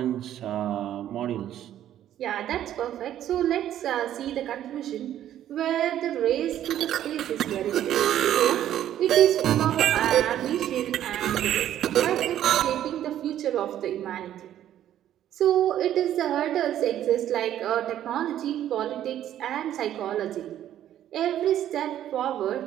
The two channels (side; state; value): left; quieter; 11.5 dB